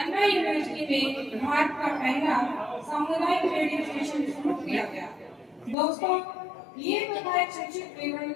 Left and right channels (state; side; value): drops out; right; at 5.8 s